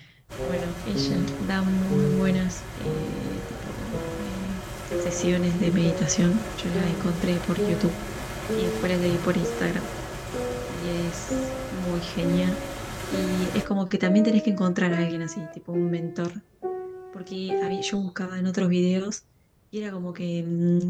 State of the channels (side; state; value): both; identical; correlation 1.00